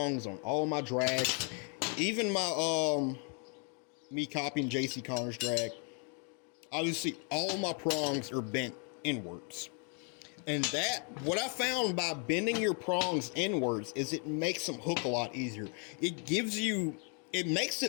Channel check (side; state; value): right; quieter; 39.5 dB